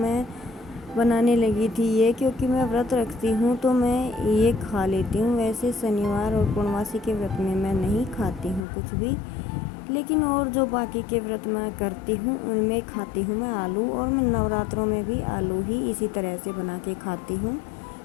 बनाने लगी थी ये, क्योंकि मैं व्रत रखती हूँ तो मैं ये खा लेती हूँ। वैसे शनिवार और पूर्णमासी के व्रत में मैं नहीं खाती हूँ कुछ भी, लेकिन और जो बाकी के व्रत मैं करती हूँ उनमें खाती हूँ मैं आलू। और मैं नवरात्रों में भी आलू ही इसी तरह से बना के खाती हूँ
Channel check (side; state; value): right; drops out; at 8.7 s